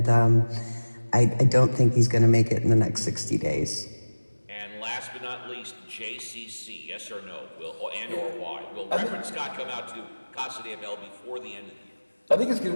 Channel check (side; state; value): both; inverted; correlation -1.00